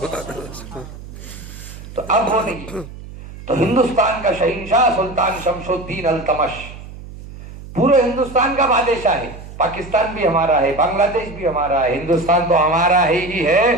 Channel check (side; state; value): right; noise; hum, 14 dB below the sound